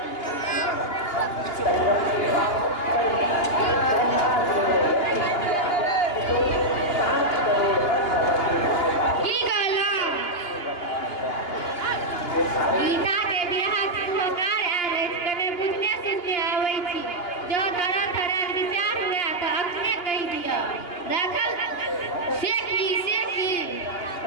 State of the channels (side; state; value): right; late; 2.9 ms